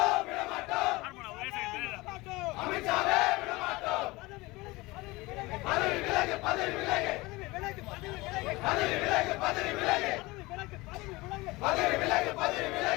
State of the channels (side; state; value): right; quieter; 22.0 dB